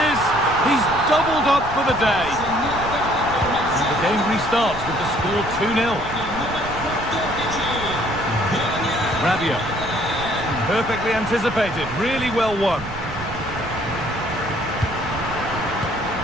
is. He's doubled up for the day. And the game restarts with the score 2-0. Rabiot. Perfectly anticipated. Really well won.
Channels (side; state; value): right; noise; rumble, 12 dB below the sound